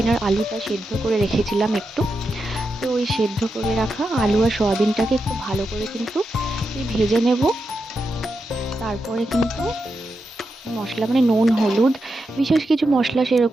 আর আলুটা সেদ্ধ করে রেখেছিলাম একটু। তো ওই সেদ্ধ করে রাখা আলু আর সয়াবিনটাকে একটু ভালো করে কিন্তু ভেজে নেব। তারপরে কিন্তু মশলা মানে নুন হলুদ, বিশেষ কিছু মশলা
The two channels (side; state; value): both; normal; correlation 0.87